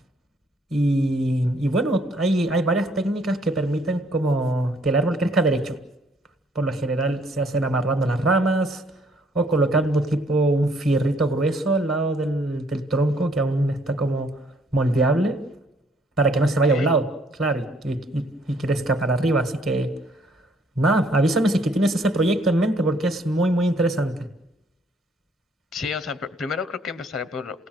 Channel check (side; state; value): both; normal; correlation 0.65